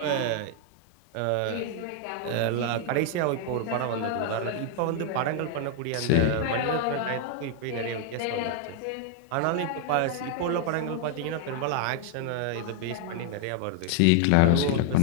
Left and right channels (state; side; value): different; both; correlation 0.00